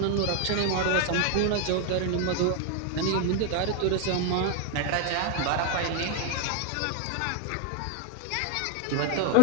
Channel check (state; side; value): different; both; correlation 0.01